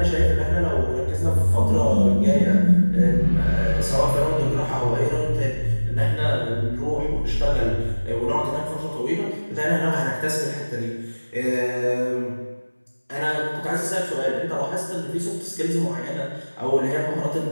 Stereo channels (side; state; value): both; inverted; correlation -1.00